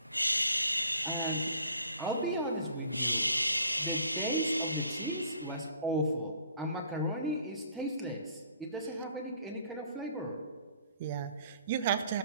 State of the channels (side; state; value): both; inverted; correlation -0.56